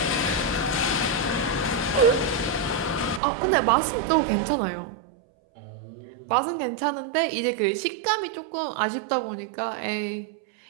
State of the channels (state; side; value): drops out; left; at 3.2 s